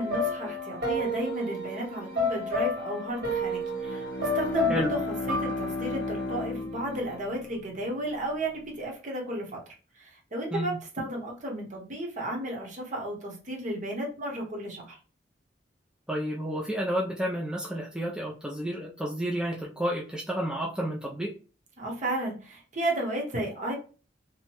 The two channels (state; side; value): normal; both; correlation 0.45